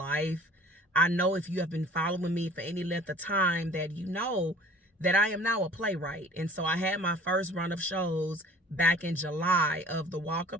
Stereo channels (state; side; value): normal; both; correlation 0.47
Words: I know if you have been following me for any length of time that you know that I am now a playwright. And so I had my first run of shows back in July of the Walk